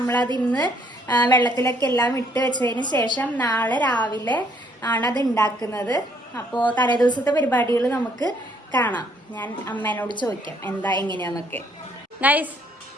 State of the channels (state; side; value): normal; both; correlation 0.66